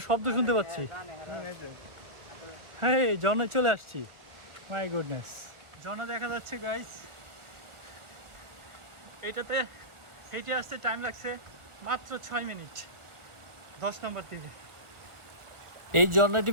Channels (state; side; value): late; left; 1.4 ms